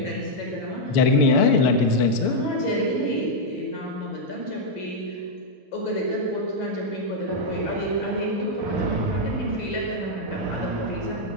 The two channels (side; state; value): both; normal; correlation -0.03